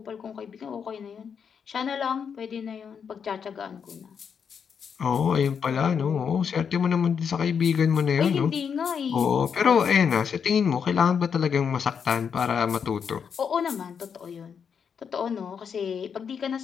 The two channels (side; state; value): right; quieter; 6.9 dB